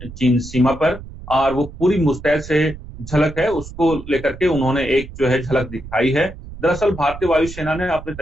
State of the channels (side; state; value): right; noise; rumble, 14 dB below the sound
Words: चीन सीमा पर, और वो पूरी मुस्तैद से झलक है, उसको लेकर के उन्होंने एक जो है झलक दिखाई है। दरअसल भारतीय वायुसेना ने अपनी